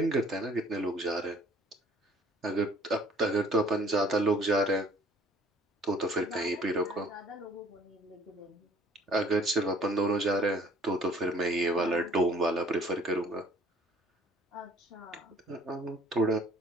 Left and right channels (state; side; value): normal; both; correlation 0.56